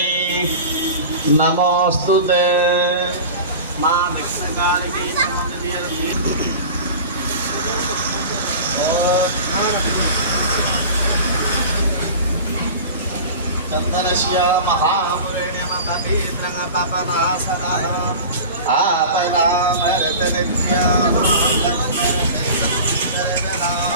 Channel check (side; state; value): both; inverted; correlation -0.35